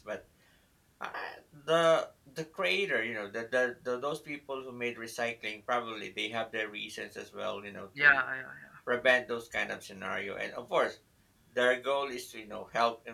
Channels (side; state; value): both; identical; correlation 1.00